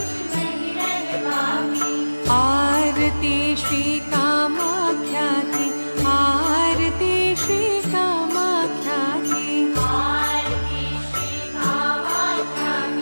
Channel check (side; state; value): both; inverted; correlation -1.00